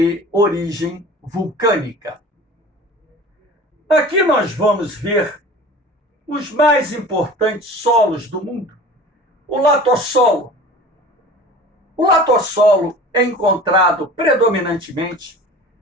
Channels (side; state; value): both; normal; correlation 0.40